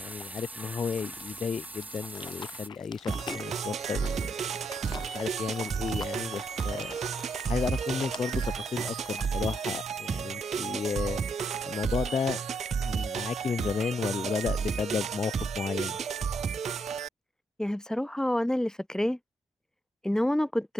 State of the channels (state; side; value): normal; both; correlation 0.77